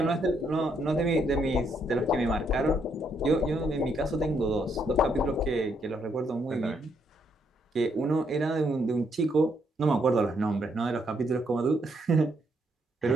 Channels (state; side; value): normal; both; correlation 0.74